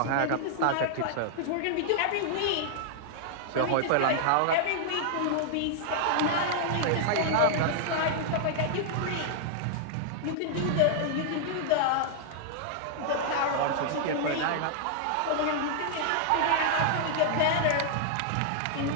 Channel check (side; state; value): both; different; correlation -0.01